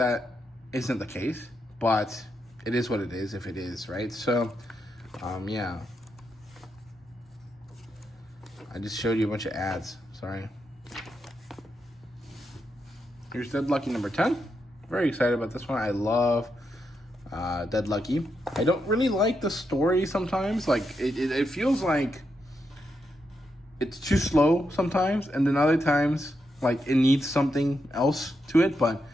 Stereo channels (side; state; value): both; normal; correlation 0.83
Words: isn't the case, but it is what it is if it is, right? So, yeah. I just showed you a bunch of ads, sorry. Here's Dead Lucky number 10. Very excited about this one. I love Dead Lucky. I don't really like the story sometimes. Like, it feels like it's too slow sometimes, and then other times, like, it needs something else to it, but